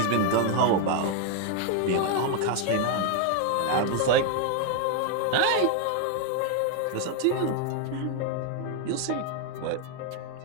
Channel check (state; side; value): different; both; correlation 0.01